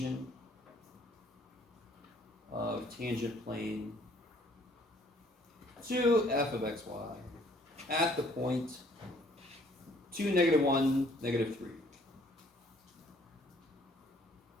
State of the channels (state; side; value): normal; both; correlation 0.60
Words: of tangent plane to f of xy at the point 2, -1, -3?